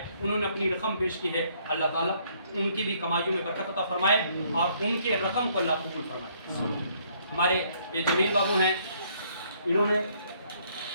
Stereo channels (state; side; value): inverted; both; correlation -0.66